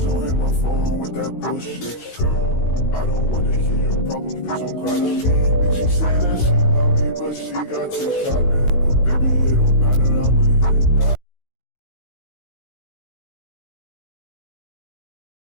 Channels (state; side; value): late; right; 16 ms